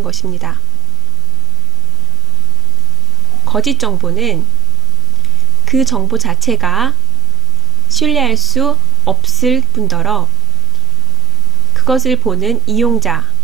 것입니다. 거짓 정보는 그 정보 자체가 신뢰할 수 없을 뿐더러 그것을 보는 이용자,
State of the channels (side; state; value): both; normal; correlation 0.85